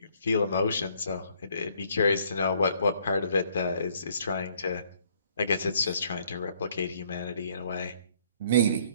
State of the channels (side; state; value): both; inverted; correlation -0.63